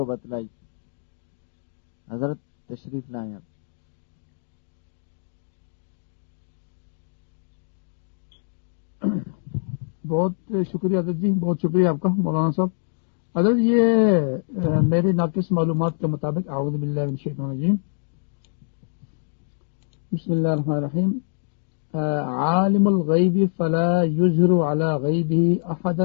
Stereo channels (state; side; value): silent; right; digital silence